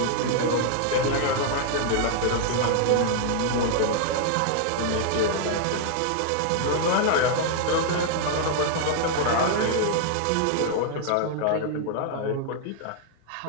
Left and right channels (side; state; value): both; different; correlation -0.01